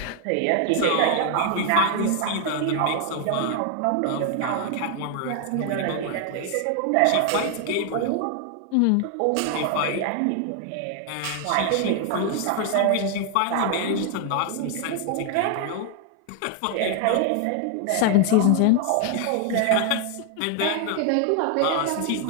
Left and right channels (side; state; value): both; different; correlation 0.00